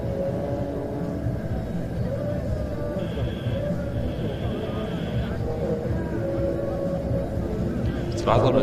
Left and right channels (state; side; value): identical; both; correlation 1.00